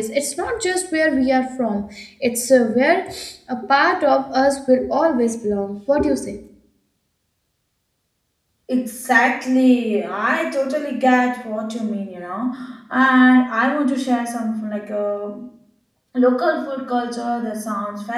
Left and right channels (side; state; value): both; identical; correlation 1.00